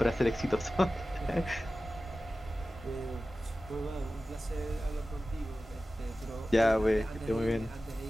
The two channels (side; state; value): both; normal; correlation 0.95